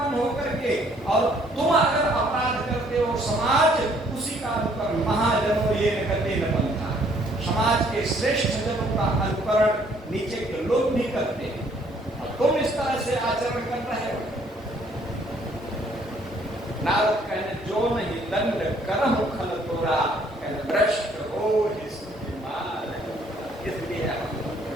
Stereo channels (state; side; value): normal; both; correlation 0.63